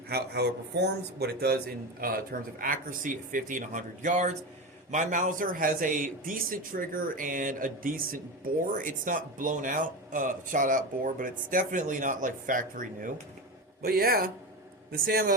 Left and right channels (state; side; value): normal; both; correlation 0.21